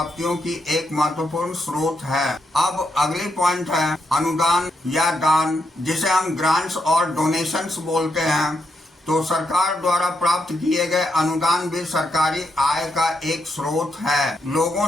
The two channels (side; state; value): both; normal; correlation 0.81